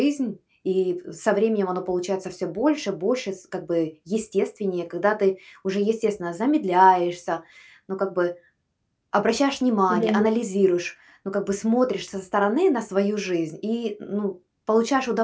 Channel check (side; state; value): both; identical; correlation 1.00